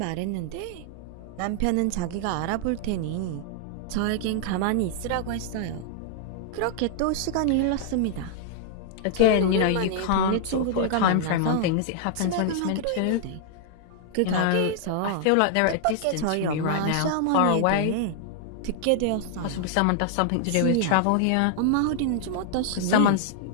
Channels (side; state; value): both; different; correlation -0.01